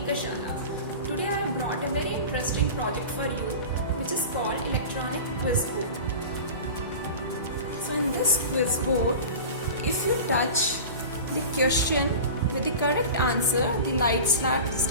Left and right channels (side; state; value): both; inverted; correlation -0.33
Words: Today I have brought a very interesting project for you, which is called Electronic Quiz Board. So in this quiz board, if you touch the question with the correct answer, the light